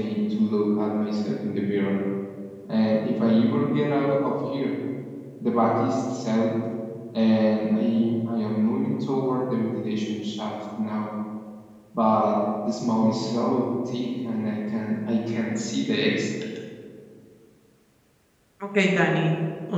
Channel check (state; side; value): identical; both; correlation 1.00